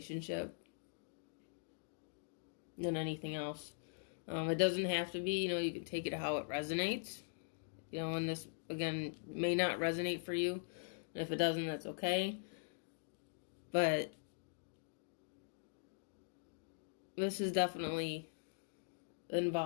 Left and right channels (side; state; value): right; silent; digital silence